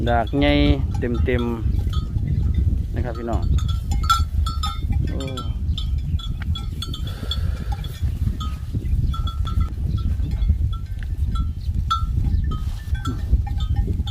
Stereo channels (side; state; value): both; identical; correlation 1.00